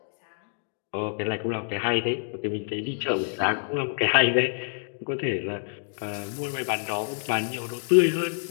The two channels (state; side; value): silent; right; digital silence